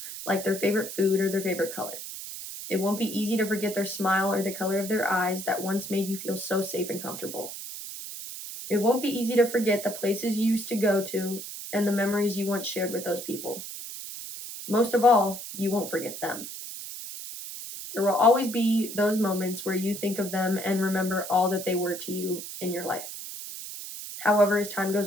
like their favorite food or their favorite color. It won't be easy to forget their smile or the color of their eyes that once made you feel so safe and comfortable. It won't be easy to forget the places you used to go to and the memories you once shared with those people. Most of all, you won't forget them. There will always be those moments where you think of them and remember all that they were to you in your life. However, as time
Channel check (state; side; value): noise; right; hiss, 9 dB below the sound